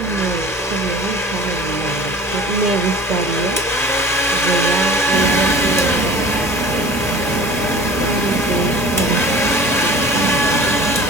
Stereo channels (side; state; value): both; normal; correlation 0.43